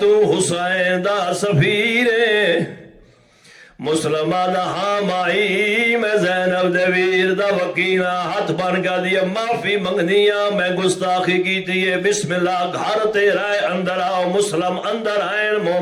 تو حسین دا سفیرے. مسلمہ دا ہاں مائی میں زینب دے ویر دا وکینہ ہاتھ بن کا دیئے معافی منگ دیا میں گستاخی کی دیئے. بسم اللہ گھر تیرا ہے اندر آؤ. مسلم اندر آئیں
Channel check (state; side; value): identical; both; correlation 1.00